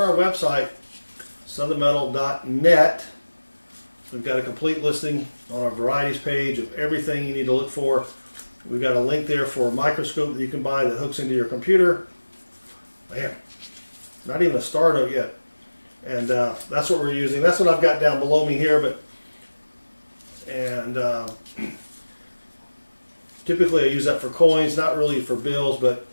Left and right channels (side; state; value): both; inverted; correlation -1.00